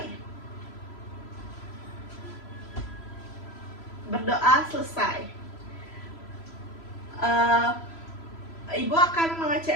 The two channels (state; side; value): late; right; 3.0 ms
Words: Berdoa selesai. Ibu akan